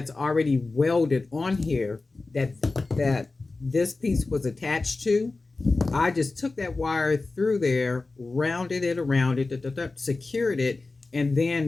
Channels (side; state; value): right; quieter; 3.5 dB